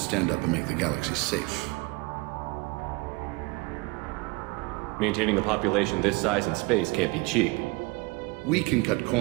up and make the galaxy safe. Maintaining a population this size in space can't be cheap. We can cut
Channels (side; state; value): left; quieter; 25.5 dB